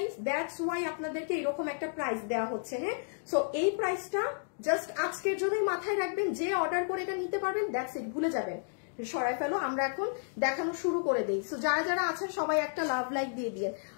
দ্যাটস ওয়াই আপনাদেরকে এরকম একটা প্রাইস দেওয়া হচ্ছে। হ্যাঁ, সো এই প্রাইসটা জাস্ট আজকের জন্যই মাথায় রাখবেন, যে অর্ডার করে এটা নিতে পারবেন, দ্যাটস ইট, ভুলে যাবেন, সরাই ফেলো। আমরা এখন দেখানো শুরু করে দিই। সো যারা যারা আছেন সবাই একটা লাভ লাইক দিয়ে দিয়ে।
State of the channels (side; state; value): right; silent; digital silence